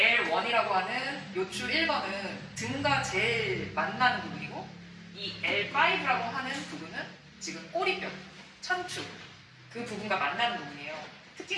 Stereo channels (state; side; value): identical; both; correlation 1.00